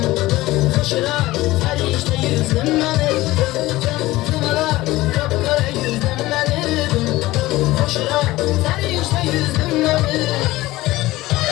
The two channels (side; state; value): right; quieter; 18.2 dB